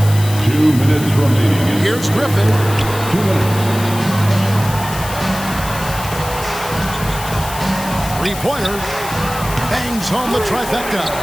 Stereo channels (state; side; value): noise; left; hiss, 11 dB below the sound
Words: 2 minutes remaining. Here's Griffin. 2 minutes. Three-pointer. Bangs home the trifecta.